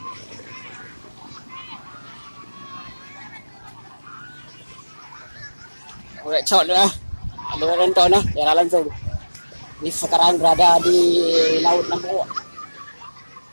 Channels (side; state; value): both; inverted; correlation -1.00